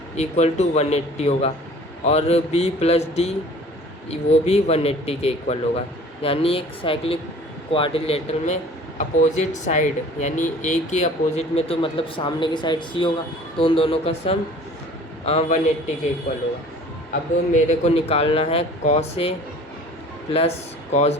equal to 180 होगा और B प्लस डी वो भी 180 के इक्वल होगा। यानी एक साइक्लिक क्वाड्रिलेटरल में अपोजिट साइड यानी A के अपोजिट में तो मतलब सामने की साइड C होगा, तो उन दोनों का सम 180 के इक्वल होगा। अब मेरे को निकालना है cos A plus cos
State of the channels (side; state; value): both; normal; correlation 0.47